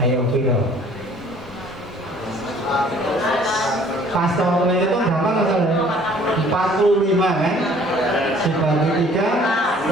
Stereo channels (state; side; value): normal; both; correlation 0.55